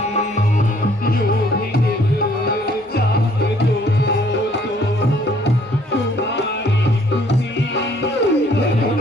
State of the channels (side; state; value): both; normal; correlation 0.61